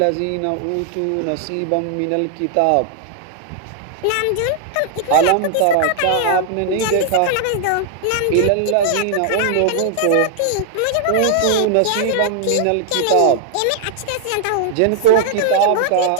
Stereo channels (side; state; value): both; different; correlation 0.00